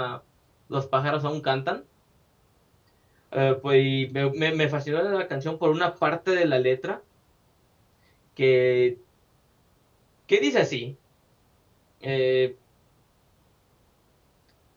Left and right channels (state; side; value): identical; both; correlation 1.00